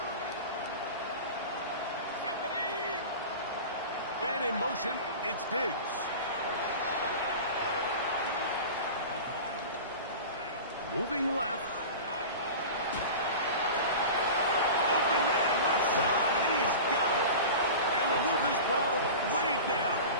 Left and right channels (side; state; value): both; inverted; correlation -0.33